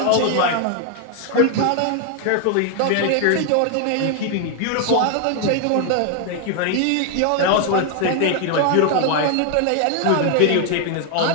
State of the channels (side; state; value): both; different; correlation 0.00